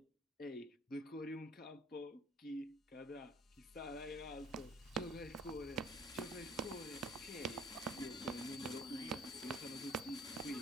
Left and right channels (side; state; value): both; normal; correlation 0.53